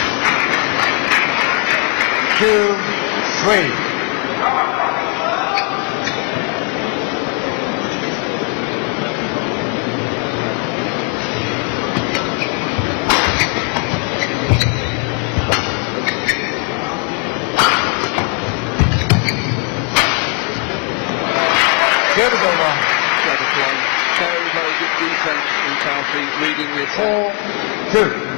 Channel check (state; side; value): quieter; right; 34.2 dB